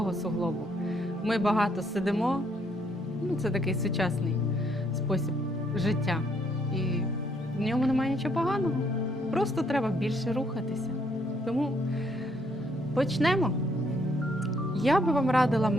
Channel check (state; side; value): normal; both; correlation 0.70